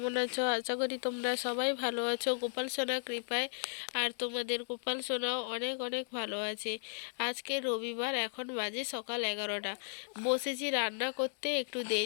আছো? আশা করি তোমরা সবাই ভালো আছো গোপাল সোনা কৃপায়। আর তোমাদের গোপাল সোনাও অনেক অনেক ভালো আছে। আজকে রবিবার, এখন বাজে সকাল 11টা। বসেছি রান্না করতে, একটু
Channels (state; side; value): silent; right; digital silence